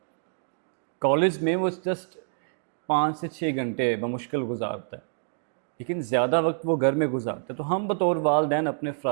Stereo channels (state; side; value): silent; left; digital silence